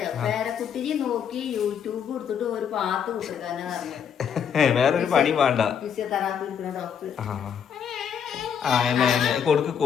പേരക്കുട്ടിയെ നോക്കി യൂട്യൂബ് കൊടുത്തിട്ട് ഒരു പാത്ത് കൊടുക്കാനാ പറഞ്ഞത്. വേറൊരു പണി വേണ്ട. ഫിസിയോതെറാപ്പി എടുക്കുന്ന ഡോക്ടർ.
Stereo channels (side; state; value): right; quieter; 7.8 dB